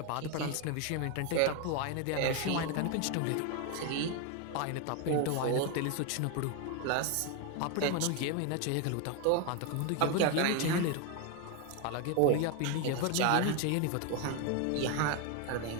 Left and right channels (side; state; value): both; different; correlation 0.01